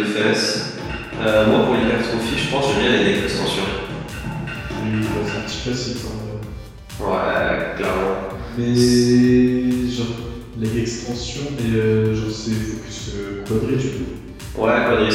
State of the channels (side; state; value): both; identical; correlation 1.00